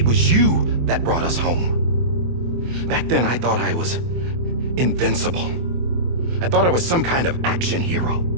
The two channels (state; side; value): late; left; 24 ms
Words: was you that brought us home. Back then, I thought I was invincible. I thought I was some kind of action hero.